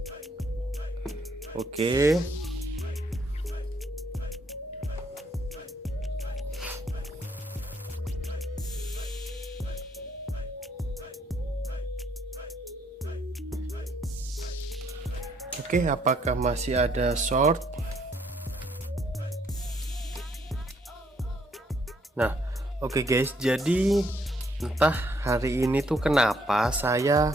Oke. Oke, apakah masih ada short? Nah, oke guys, jadi entah hari ini tuh kenapa saya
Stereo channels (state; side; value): normal; both; correlation 0.69